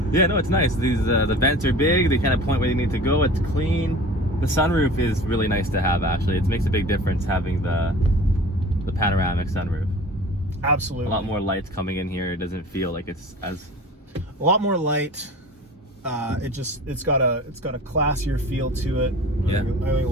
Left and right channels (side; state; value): both; normal; correlation 0.40